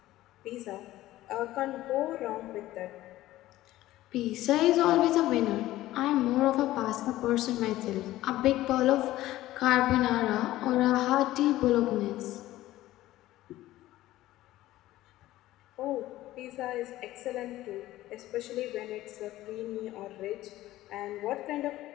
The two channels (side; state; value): right; quieter; 15.6 dB